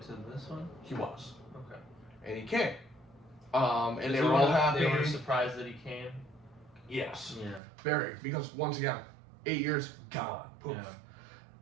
to this one? He was. Okay. And he came. And they were all happy. They were surprised that he came. Yes. Yeah. Very, because once again, 8 years gone. Poof. Yeah.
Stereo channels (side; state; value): left; drops out; at 7.6 s